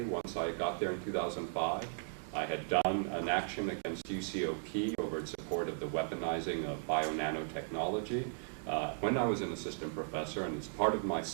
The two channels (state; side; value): silent; left; digital silence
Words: once I got there in 2005. I had done an action against UCOP over its support of the weaponizing of bio-nanotechnology when I was an assistant professor, and it's part of my